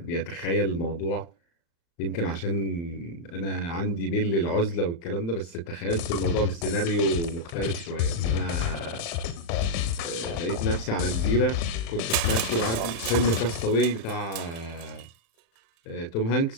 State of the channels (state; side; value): late; right; 35 ms